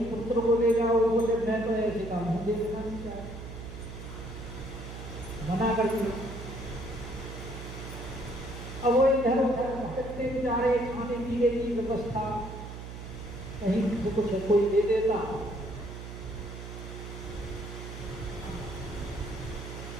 पुत्र को ले जाओ। वो बोले मैं तो ऐसे काम देखना नहीं चाहता, मना कर दिया। अब वो इधर उधर भटकते बेचारे, खाने पीने की व्यवस्था कहीं तो कुछ कोई दे देता।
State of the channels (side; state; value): right; noise; hum, 10 dB below the sound